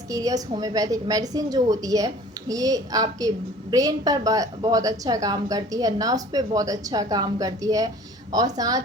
होम्योपैथिक मेडिसिन जो होती है, ये आपके ब्रेन पर बहुत अच्छा काम करती है, नर्व्स पे बहुत अच्छा काम करती है और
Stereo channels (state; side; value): normal; both; correlation 0.47